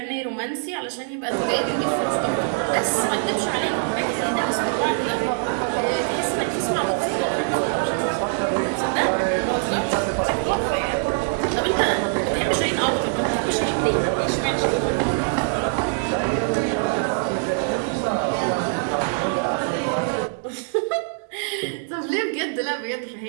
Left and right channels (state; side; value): silent; left; 60 dB below the other